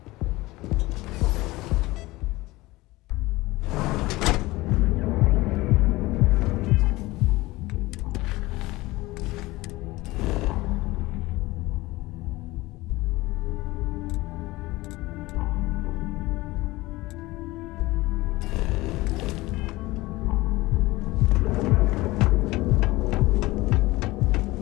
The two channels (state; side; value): quieter; right; 19.9 dB